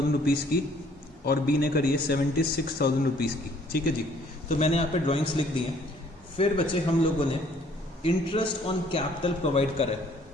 रुपीज की और बी ने करी है 76,000 रुपीज की, ठीक है जी। तो मैंने यहाँ पे ड्राइंग्स लिख दी हैं। फिर बच्चे हम लोगों ने इंटरेस्ट ऑन कैपिटल प्रोवाइड करा है,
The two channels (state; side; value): normal; both; correlation 0.60